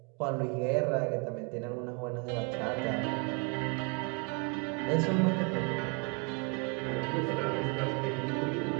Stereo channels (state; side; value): quieter; left; 32.6 dB